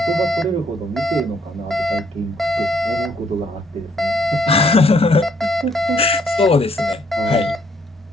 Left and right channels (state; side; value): normal; both; correlation 0.68